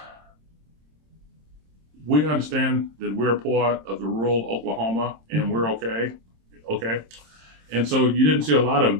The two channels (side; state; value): left; late; 26 ms